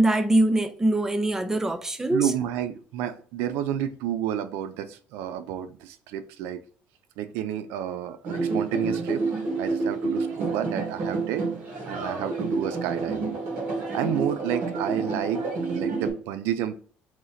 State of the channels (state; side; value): quieter; left; 4.2 dB